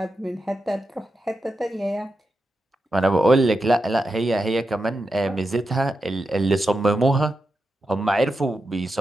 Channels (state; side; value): normal; both; correlation 0.88